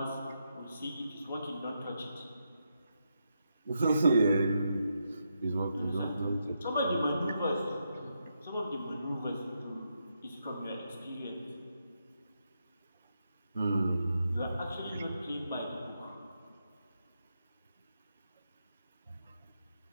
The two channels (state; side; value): inverted; both; correlation -0.83